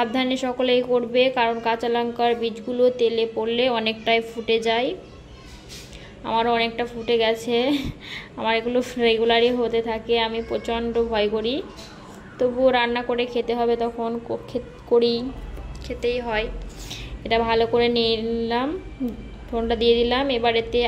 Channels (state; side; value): identical; both; correlation 1.00